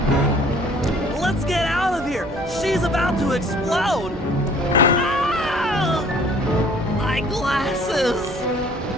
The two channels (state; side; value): normal; both; correlation 0.54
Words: Let's get out of here. She's about to explode. Ah! My glasses.